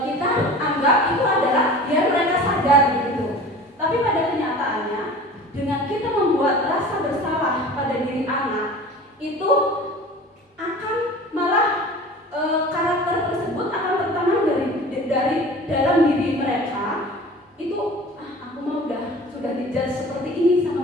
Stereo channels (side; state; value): both; normal; correlation 0.40